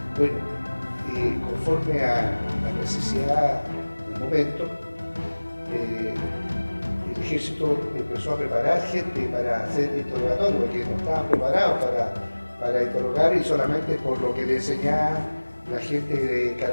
Bueno, conforme a la necesidad del momento, el ejército empezó a preparar gente para hacer interrogatorio, porque no estaban preparados para interrogar, y solamente por lo que le enseñaban la gente de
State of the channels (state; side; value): inverted; both; correlation -1.00